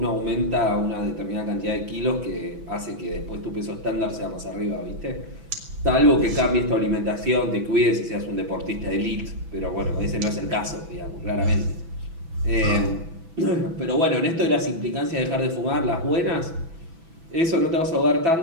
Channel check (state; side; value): late; left; 6.0 ms